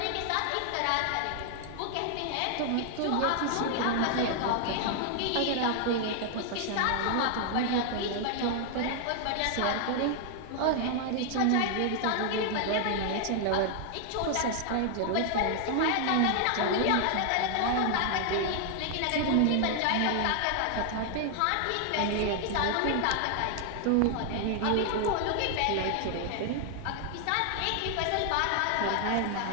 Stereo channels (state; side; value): different; both; correlation 0.00